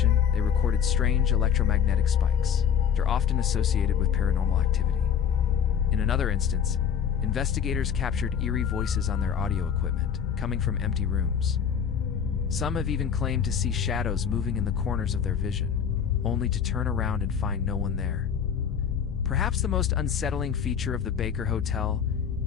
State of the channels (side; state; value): right; quieter; 7.9 dB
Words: they recorded strange electromagnetic spikes that are often associated with paranormal activity. In another instance, investigators captured eerie voices on their audio equipment, coming from empty rooms. Some have even claimed to see shadows moving in the corners of their vision, only to turn around and find no one there. Perhaps the most unsettling feature of the Baker Hotel